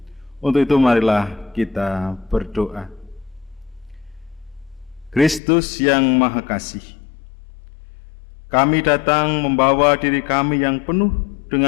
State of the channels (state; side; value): drops out; right; at 5.4 s